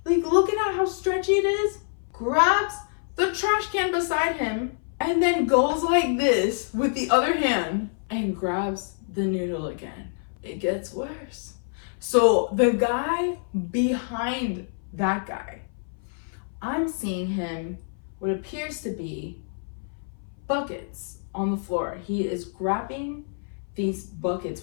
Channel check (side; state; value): right; silent; 58 dB below the other